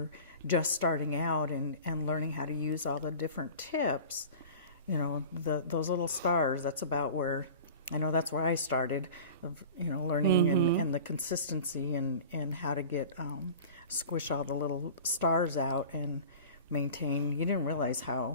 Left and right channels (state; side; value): inverted; both; correlation -0.39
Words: just starting out and learning how to use all the different tips, you know, those little stars, that's about where, I know that's where I started, you know, learning and the consistency and how to get, squish all the little stars out and maintain. You didn't realize